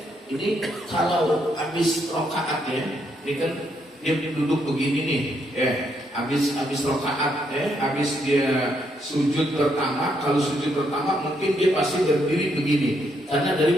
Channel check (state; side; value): normal; both; correlation 0.75